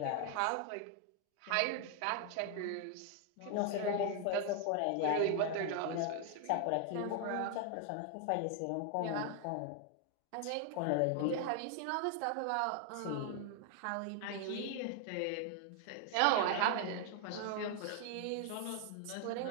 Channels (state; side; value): different; both; correlation 0.00